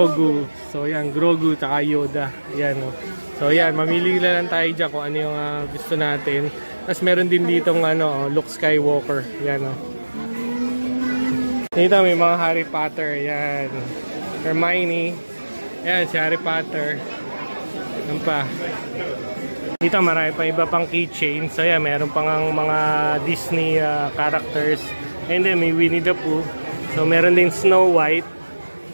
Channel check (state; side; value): inverted; both; correlation -1.00